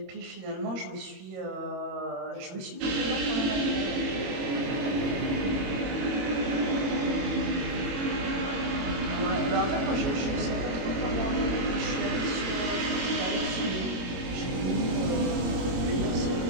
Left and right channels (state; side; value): late; left; 21 ms